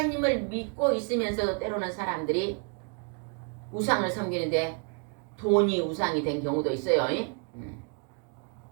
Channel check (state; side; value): quieter; left; 37.1 dB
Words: 믿고 있으면서도 때로는 사람들이 우상을 섬기는데 돈이 우상이 된 경우도 있어요.